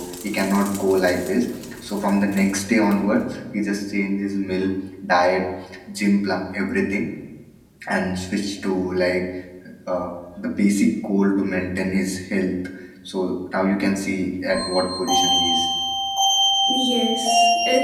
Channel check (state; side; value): identical; both; correlation 1.00